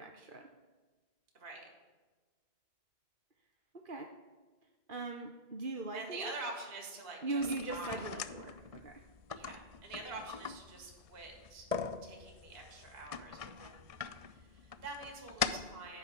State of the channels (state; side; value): late; left; 1.7 ms